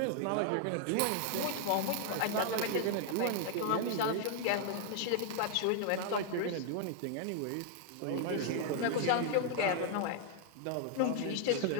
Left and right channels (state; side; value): different; both; correlation 0.00